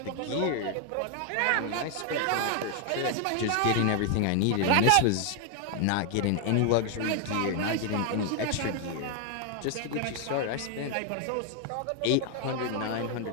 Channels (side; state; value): both; different; correlation 0.00